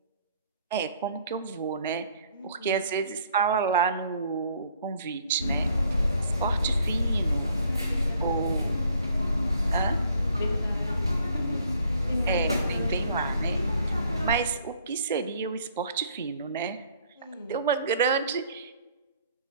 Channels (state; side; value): inverted; both; correlation -0.62